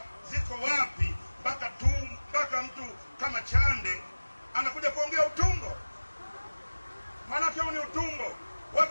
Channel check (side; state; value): both; inverted; correlation -1.00